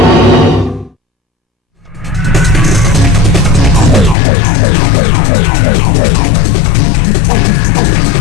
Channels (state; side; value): drops out; right; at 4.2 s